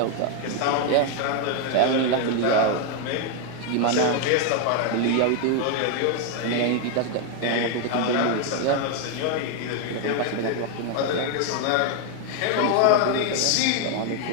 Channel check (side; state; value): both; different; correlation 0.01